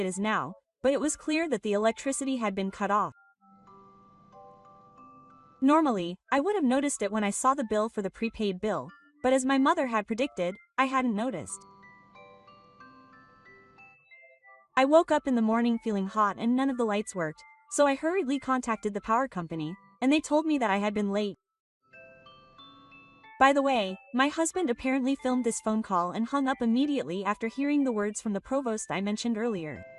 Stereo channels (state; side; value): identical; both; correlation 1.00